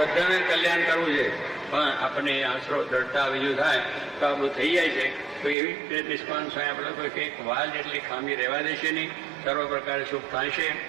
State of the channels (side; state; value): left; drops out; at 5.6 s